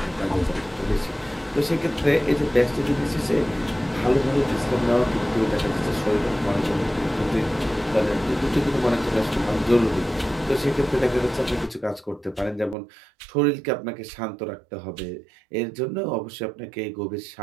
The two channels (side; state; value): left; drops out; at 12.8 s